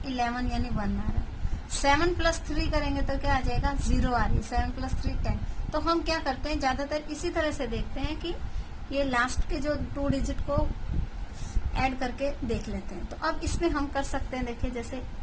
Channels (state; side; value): identical; both; correlation 1.00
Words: 11 यानी 1 आ रहा है। 7 प्लस 3 करेंगे तो क्या आ जाएगा, 0 आ रही है। 7 प्लस 3 10। तो हम क्या करते हैं, ज्यादातर इसी तरह से देखते हैं कि ये लास्ट के जो 2 डिजिट को ऐड करके देख लेते हैं। तो अब इसमें हम कर सकते हैं, देखिए जैसे